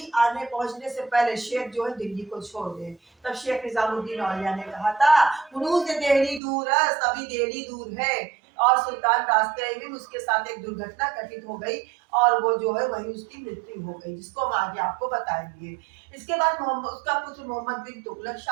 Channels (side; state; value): left; drops out; at 6.4 s